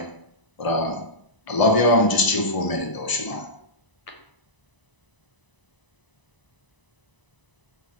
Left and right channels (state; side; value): late; right; 1.0 ms